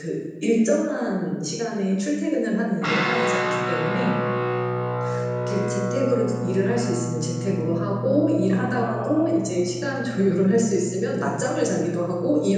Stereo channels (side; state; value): both; identical; correlation 1.00